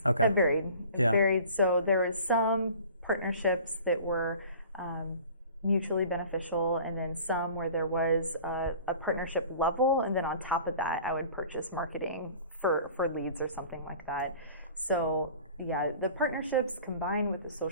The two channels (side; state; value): both; inverted; correlation -0.45